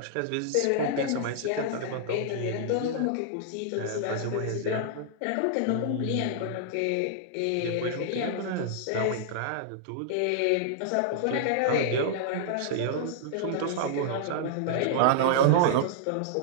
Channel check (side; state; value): both; different; correlation -0.01